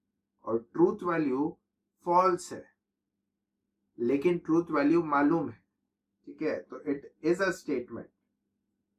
और ट्रूथ वैल्यू फॉल्स है, लेकिन ट्रूथ वैल्यू मालूम है, ठीक है। तो it is a statement,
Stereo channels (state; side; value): identical; both; correlation 1.00